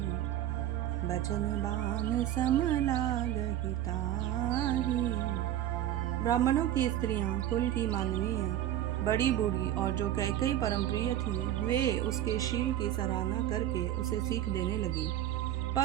बचन बान सम लागहि ताही। ब्राह्मणों की स्त्रियां कुल की माननीय, बड़ी बूढ़ी और जो कैकई परम प्रिय थी, वे उसके शील की सराहना करके उसे सीख देने लगी,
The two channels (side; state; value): left; quieter; 12.1 dB